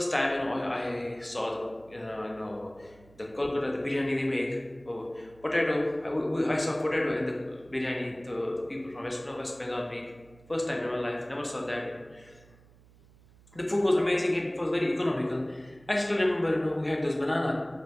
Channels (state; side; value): noise; right; hum, 26 dB below the sound